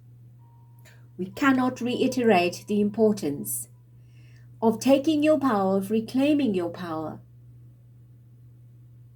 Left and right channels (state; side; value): identical; both; correlation 1.00